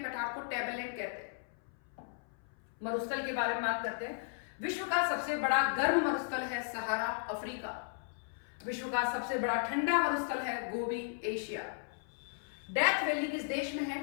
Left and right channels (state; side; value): silent; right; 54 dB below the other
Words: को टेबललैंड कहते हैं। मरुस्थल के बारे में बात करते हैं। विश्व का सबसे बड़ा गर्म मरुस्थल है सहारा, अफ्रीका। विश्व का सबसे बड़ा ठंडा मरुस्थल है गोबी, एशिया। डेथ वैली किस देश में है?